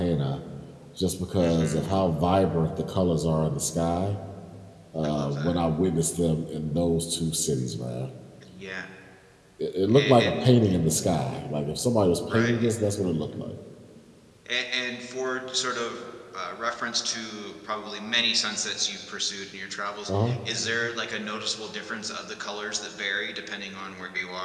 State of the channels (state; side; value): identical; both; correlation 1.00